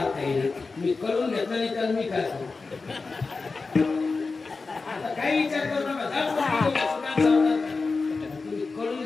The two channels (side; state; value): right; quieter; 4.1 dB